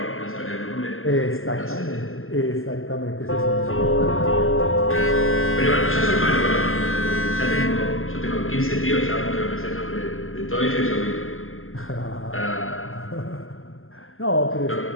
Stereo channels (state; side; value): late; right; 0.61 ms